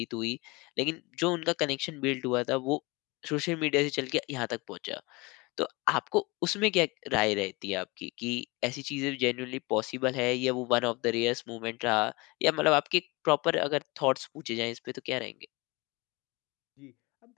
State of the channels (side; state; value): right; quieter; 25.2 dB